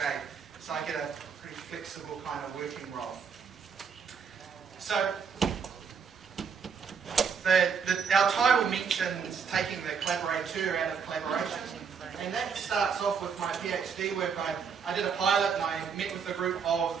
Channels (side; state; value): left; quieter; 6.3 dB